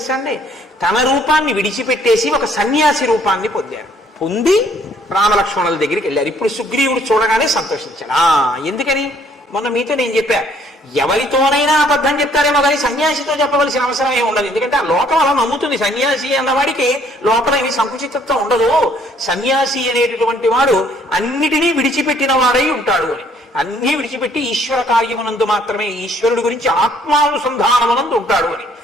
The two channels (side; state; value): both; normal; correlation 0.63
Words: అండి, తన రూపాన్ని విడిచిపెట్టేసి ఒక సన్యాసి రూపాన్ని పొందారు. పొంది రామలక్ష్మణుల దగ్గరికి వెళ్ళారు. ఇప్పుడు సుగ్రీవుడు చూడగానే సంతోషించాడు. ఎందుకని మొన్న మీతో నేను చెప్పా, ఎవరితోనైనా అబద్ధం చెప్తారేమో కానీ సన్యాసితో చెప్పవలసిన అవసరం ఏమి ఉండదు. ఎందుకంటే ఆ లోకం అలా నమ్ముతుంది. సన్యాసి అన్నవాడికి లోపల ఏమి సంకుచితత్వం ఉండదు. సన్యాసి అనేటటువంటి వాడు అన్నిటినీ విడిచిపెట్టిన వాడై ఉంటాడు అని. అన్నీ విడిచిపెట్టి ఈశ్వర కార్యమునందు మాత్రమే, ఈశ్వరుడు గురించి ఆత్మానుసంధానమునందు ఉంటాడు అని.